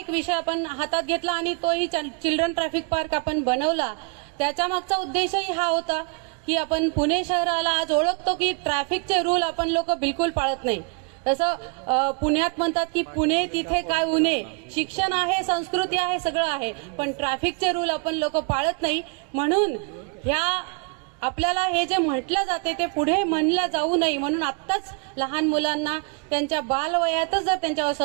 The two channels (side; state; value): left; quieter; 36.3 dB